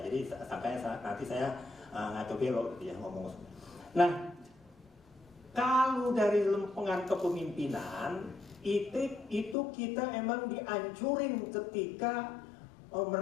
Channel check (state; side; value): drops out; right; at 9.6 s